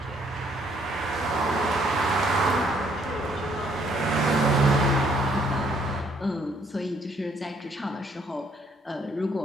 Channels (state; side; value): normal; both; correlation 0.66